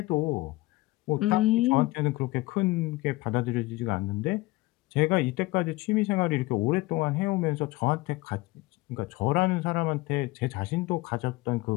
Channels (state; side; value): quieter; right; 20.4 dB